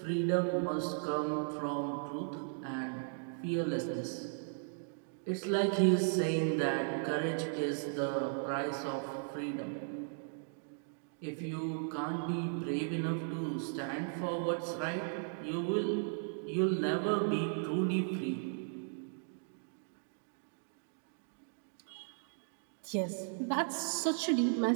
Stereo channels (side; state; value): left; silent; digital silence